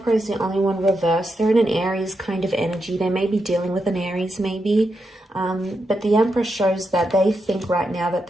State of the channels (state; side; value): normal; both; correlation 0.85